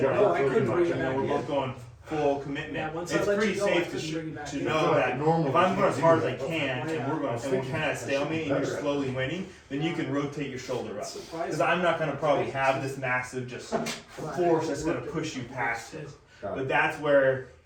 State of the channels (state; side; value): identical; both; correlation 1.00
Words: Yeah, line. No, I couldn't pretty bring much. it And then back we're in. both going full commitment. Yeah, once I It's let pretty you go, I safe couldn't bring you back to in. know that Normally if I'm you going as can't hard do as I that. can and we're kind of stalemate and you're slowly winning, then you can rotate your shoulder up. Because I'm not going to probably have this massive just force that's going to push you past it. But that's where